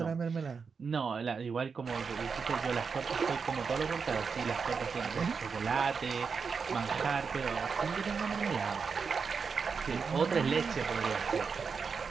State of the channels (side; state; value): left; quieter; 5.5 dB